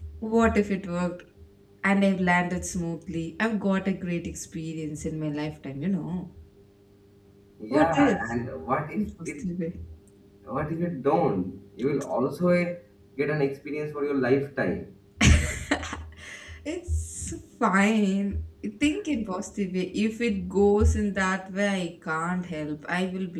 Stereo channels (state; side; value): identical; both; correlation 1.00